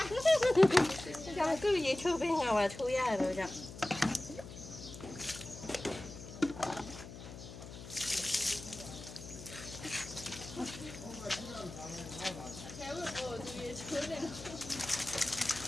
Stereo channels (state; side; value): noise; left; hum, 13 dB below the sound